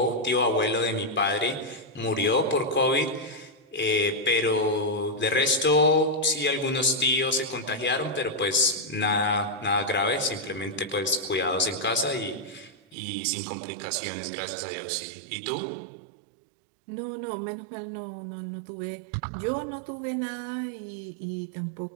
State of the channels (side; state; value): left; drops out; at 13.0 s